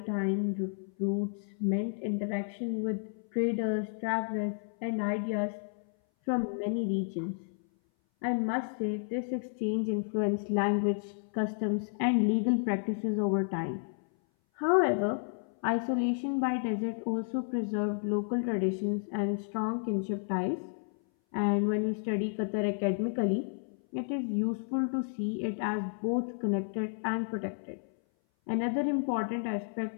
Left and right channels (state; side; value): silent; right; 57 dB below the other